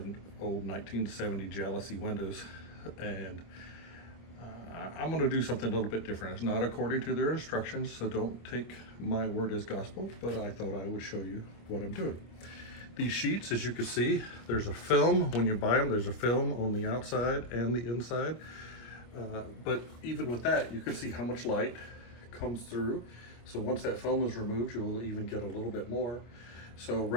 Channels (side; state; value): right; late; 26 ms